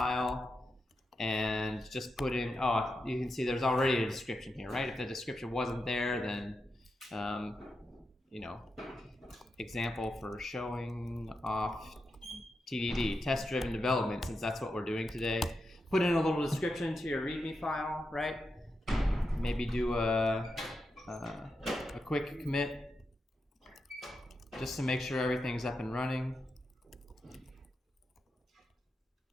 and just put in, you can see there's already a description here, right? If the description wasn't there, then, example for showing off TDD, test-driven development, since that's what we're doing today. Put in a little description to your README file, right? Maybe do a quick commit just to make sure everything's up and running.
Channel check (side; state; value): both; normal; correlation 0.87